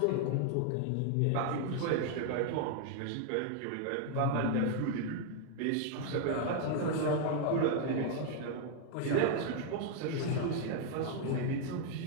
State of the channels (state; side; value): different; both; correlation 0.00